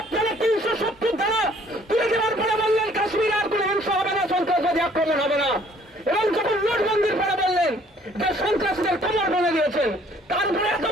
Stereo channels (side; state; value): both; normal; correlation 0.59